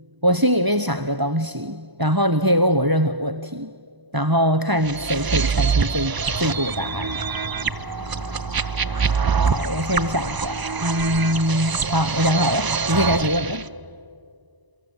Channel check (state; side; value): late; left; 1.0 ms